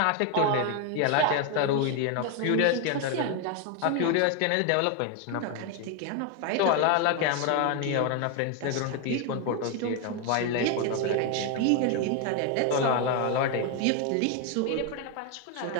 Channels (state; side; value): different; both; correlation 0.01